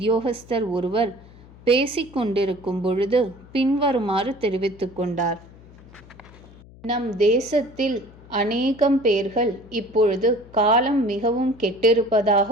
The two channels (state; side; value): noise; left; hum, 22 dB below the sound